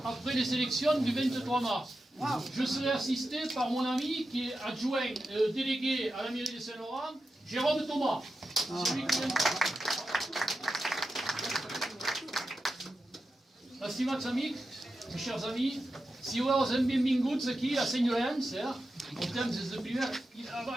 après les élections du 23 mars. Je serai assisté par mon ami qui est adjoint délégué à la mairie de Saint-Laurent, Jérôme Thomas. Estimați amics, mes chers amis, si vă auzim benvinguts aquí a Sant Llorenç, portem des de primer,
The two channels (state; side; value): normal; both; correlation 0.90